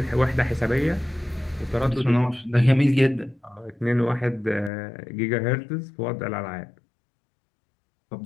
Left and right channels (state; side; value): drops out; right; at 4.7 s